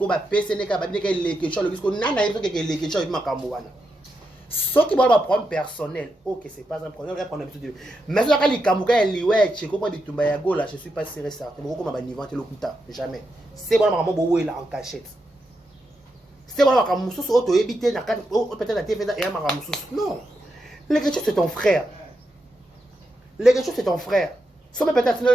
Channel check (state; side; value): normal; both; correlation 0.85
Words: ba PCN ka ba bine ka leke cho le bisko nana yeso ke leke cho makambo wana soki ba problème personnel OK c'est pas un problème on a l'habitude mais ça ka likamuka liwe cheko po bitumba ya gola je suis pas sûr certain ko ma ba niveau te lokuta jamais c'est bon maman bo wela en cachette. C'est voilà comme Moussous auto éviter na peut-être la TV et ma Moussous. Non. Les gars c'est ton frère. Les gars c'est ton frère. Si peut-être